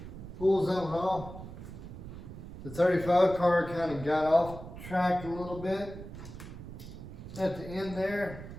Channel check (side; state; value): right; noise; rumble, 12 dB below the sound